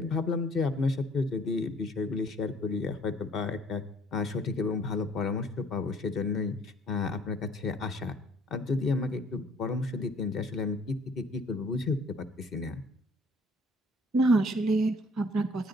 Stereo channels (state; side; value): normal; both; correlation 0.57